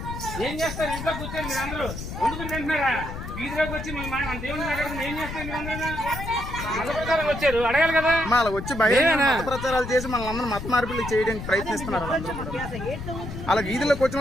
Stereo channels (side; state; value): left; noise; rumble, 8 dB below the sound